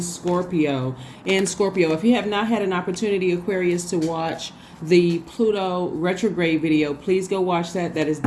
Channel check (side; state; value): both; identical; correlation 1.00